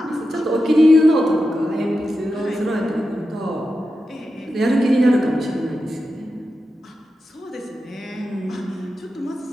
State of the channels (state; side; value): normal; both; correlation 0.90